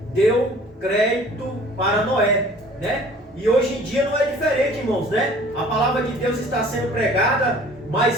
deu crédito para Noé, né? E hoje em dia não é diferente, irmãos, né? A palavra de Deus está sendo pregada,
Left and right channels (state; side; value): normal; both; correlation 0.50